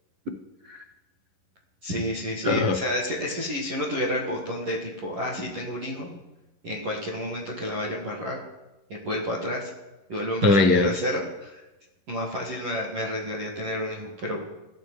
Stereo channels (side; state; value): left; late; 11 ms